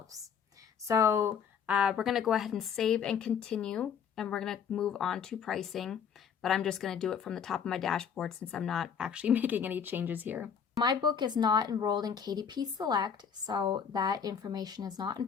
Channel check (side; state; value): right; quieter; 7.2 dB